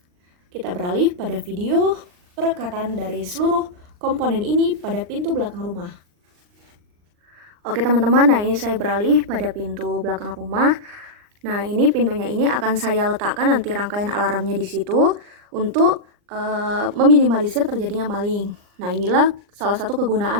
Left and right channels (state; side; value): late; left; 39 ms